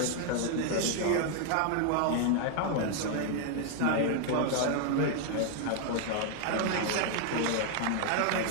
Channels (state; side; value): different; both; correlation 0.00